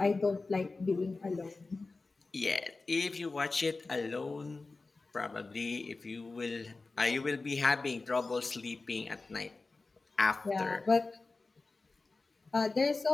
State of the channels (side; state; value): right; quieter; 3.7 dB